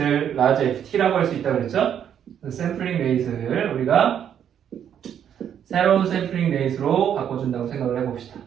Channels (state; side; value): quieter; left; 9.1 dB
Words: 라지 FT라고 할 수 있다고 그랬죠. 샘플링 레이트를 우리가 새로운 샘플링 레이트로 바꿔준다고 생각을 해봅시다.